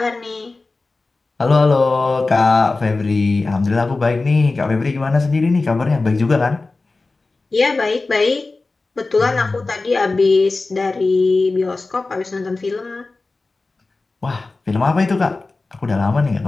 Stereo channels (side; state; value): right; quieter; 3.5 dB